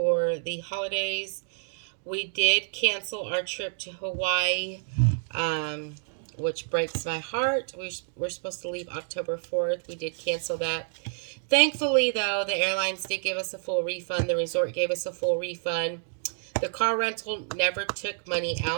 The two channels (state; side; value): silent; left; digital silence